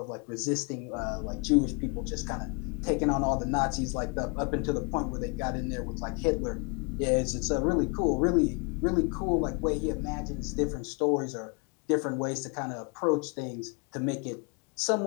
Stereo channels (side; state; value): right; quieter; 32.5 dB